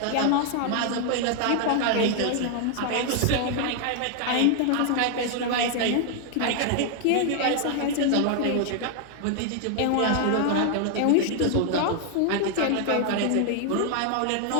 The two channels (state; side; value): different; both; correlation 0.00